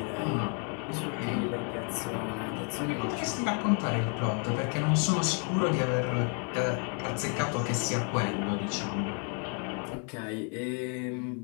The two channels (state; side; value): quieter; right; 39.7 dB